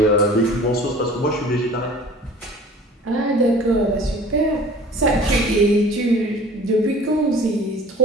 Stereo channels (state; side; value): normal; both; correlation 0.46